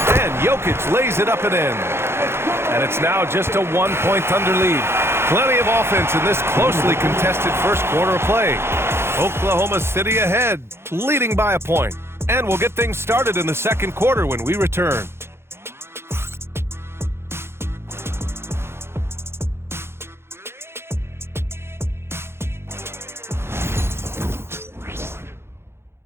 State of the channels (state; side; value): late; left; 0.12 ms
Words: And Jokic lays it up and in. And it's now just a 1-point Thunder lead. Plenty of offense in this closely contested first quarter of play. Oklahoma City ahead, leading by a point. And we'll get things started in the second quarter when we return.